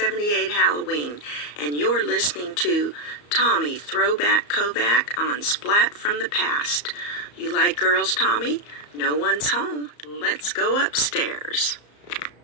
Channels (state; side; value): late; right; 34 ms